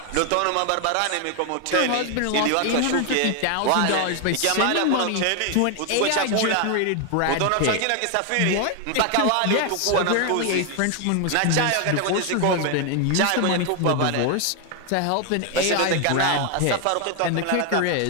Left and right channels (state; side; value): different; both; correlation 0.01